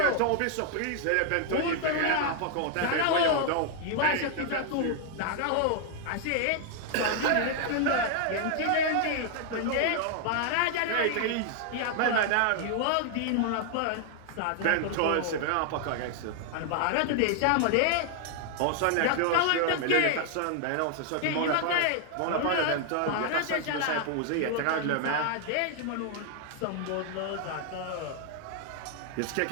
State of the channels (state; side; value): different; both; correlation 0.00